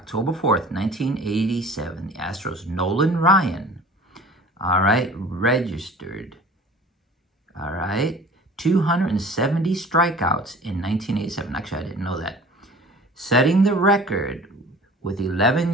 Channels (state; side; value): normal; both; correlation 0.44